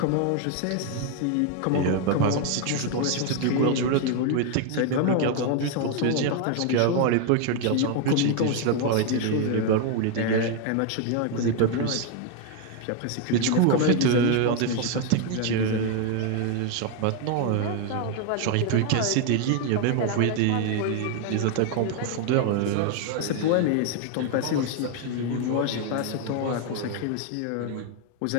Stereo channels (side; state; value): both; different; correlation 0.01